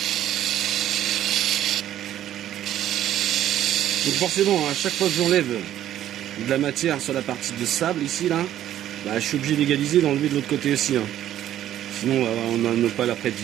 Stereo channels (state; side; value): quieter; left; 11.9 dB